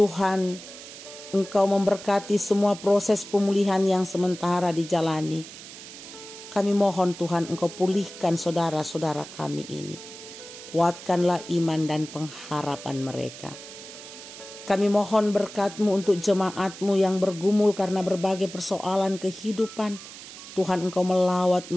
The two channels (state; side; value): noise; right; hiss, 14 dB below the sound